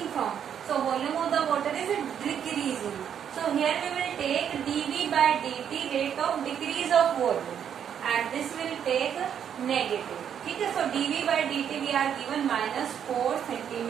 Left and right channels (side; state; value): left; quieter; 8.6 dB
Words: from, so volume of the water is decreasing. So here we will take dv by dt rate of decrease of volume and this will take negative. ठीक है, so dv by dt we are given -4